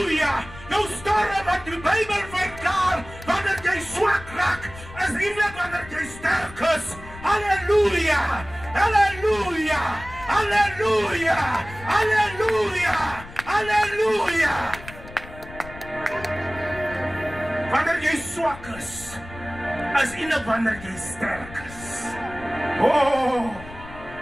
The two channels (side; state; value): left; noise; rumble, 16 dB below the sound